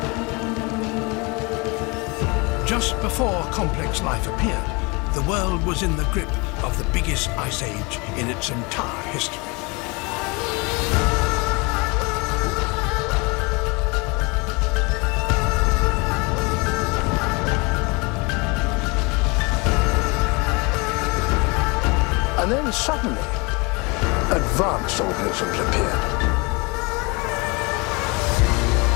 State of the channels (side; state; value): right; quieter; 28.0 dB